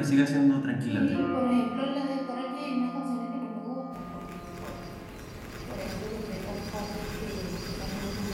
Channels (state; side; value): identical; both; correlation 1.00